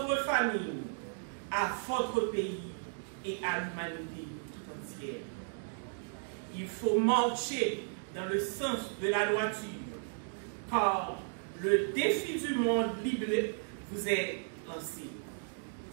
famille, à votre pays et à l'humanité tout entière. Il faut marcher dans le sens de la droiture, car le défi du monde biblique vous est lancé.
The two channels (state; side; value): silent; left; digital silence